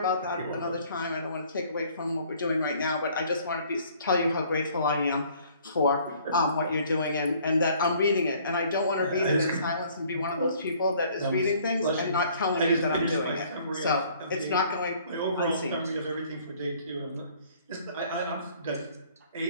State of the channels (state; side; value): inverted; both; correlation -0.58